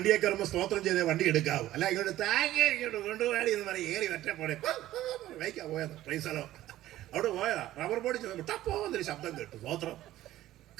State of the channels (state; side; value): quieter; left; 14.5 dB